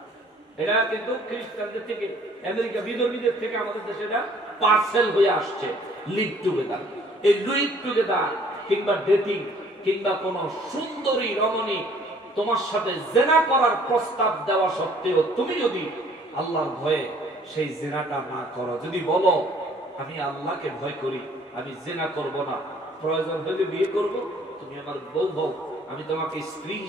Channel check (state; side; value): normal; both; correlation 0.58